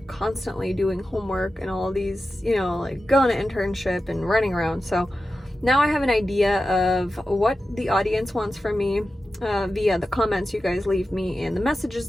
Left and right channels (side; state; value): both; normal; correlation 0.92